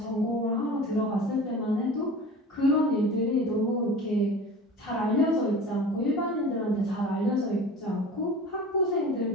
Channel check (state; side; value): normal; both; correlation 0.37